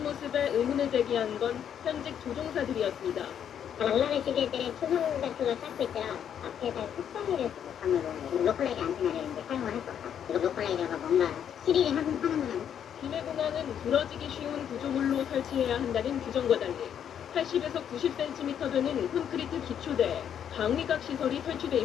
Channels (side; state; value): right; quieter; 9.0 dB